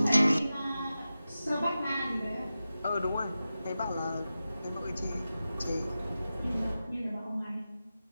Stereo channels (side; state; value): both; inverted; correlation -0.93